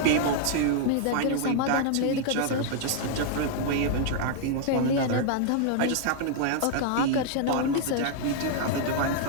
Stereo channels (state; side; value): different; both; correlation 0.00